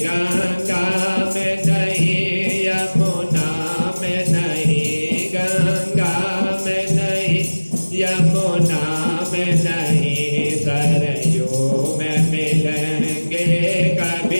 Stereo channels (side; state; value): both; inverted; correlation -1.00